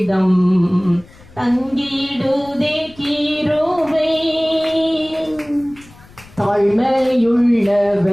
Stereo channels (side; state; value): left; noise; rumble, 24 dB below the sound